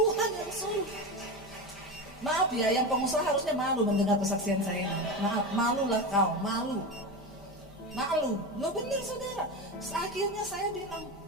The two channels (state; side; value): normal; both; correlation 0.21